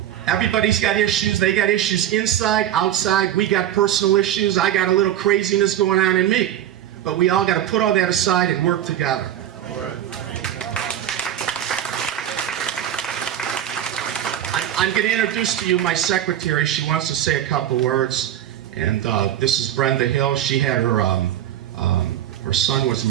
Everybody's got issues. They got issues inside, outside. We got personal issues. I got a little craziness going on in me. But we all got to put all that aside and work together. I'm going to introduce to you my secretary. She wants to say a couple words. And this is Brenda Hill. She had her son was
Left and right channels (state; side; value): quieter; left; 11.3 dB